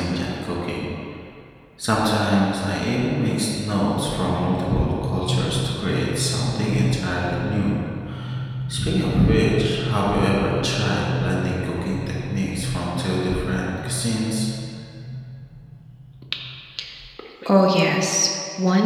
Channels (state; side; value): identical; both; correlation 1.00